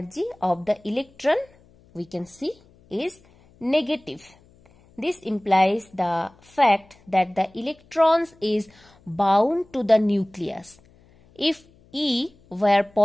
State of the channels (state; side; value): noise; left; hum, 29 dB below the sound